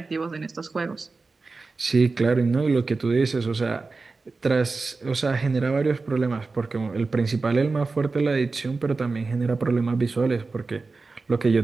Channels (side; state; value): left; quieter; 3.9 dB